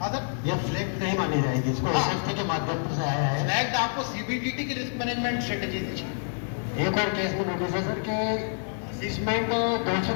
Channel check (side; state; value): right; silent; digital silence